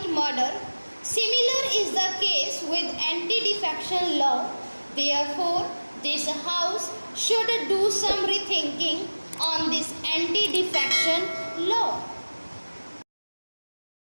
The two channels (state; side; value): inverted; both; correlation -1.00